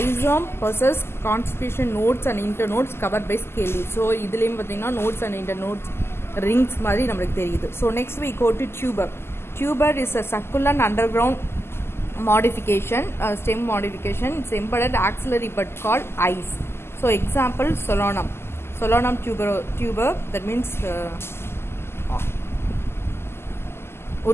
possess conspicuous nodes and internodes covered by scale leaves. So இதுலேயும் பார்த்தீங்கன்னா nodes and internodes rings மாதிரி நம்மளுக்கு தெரியுது. So next we go to tuber. Tuber is a succulent underground modification, stem modification. It's embedded axillary bud called eyes. So example solanum tuber, that means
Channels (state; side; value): late; right; 0.12 ms